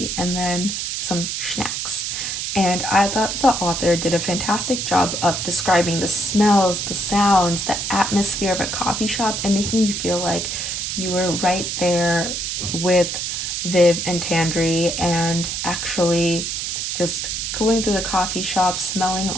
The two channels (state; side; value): noise; right; hiss, 3 dB below the sound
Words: and then some snacks. And I thought the author did a fantastic job of describing the smells, the sounds, the atmosphere of a coffee shop, and making you feel like you were right there with Viv and Tandri, and actually just going through the coffee shop, smelling